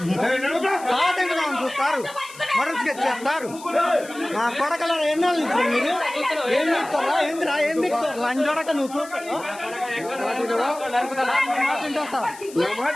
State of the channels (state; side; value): noise; left; hiss, 18 dB below the sound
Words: చూస్తారు, మరొక చేస్తారు. నా కొడకలో ఎన్నో ఇస్తారు మీరు. ఏం చెప్తారా? ఏందిరా? ఏం చెప్తారు? లంజోడక నువ్వు చూస్తావు.